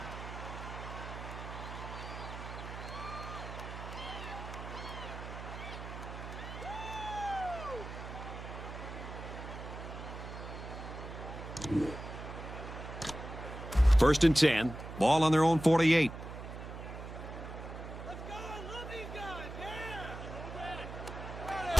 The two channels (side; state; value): right; noise; hum, 9 dB below the sound